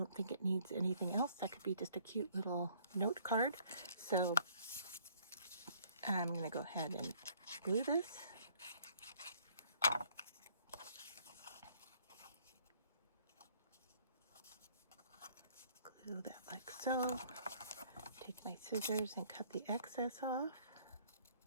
think it needs anything else. That could be just a cute little note card. So I'm going to go ahead and glue this. Glue that like so. Take my scissors and cut the excess off.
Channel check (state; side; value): inverted; both; correlation -0.61